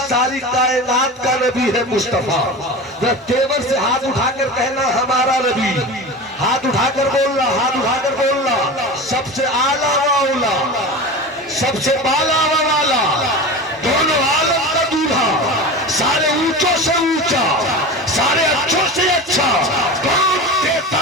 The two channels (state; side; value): normal; both; correlation 0.30